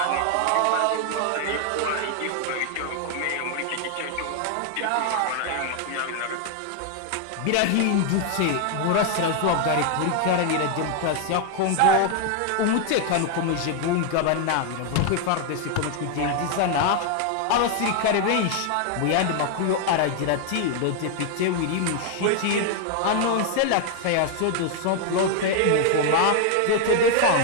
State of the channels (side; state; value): both; different; correlation 0.00